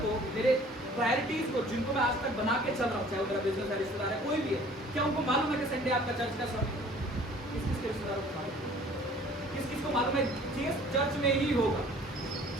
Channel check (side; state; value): both; normal; correlation 0.51